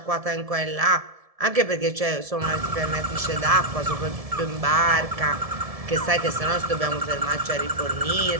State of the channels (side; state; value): left; late; 1.7 ms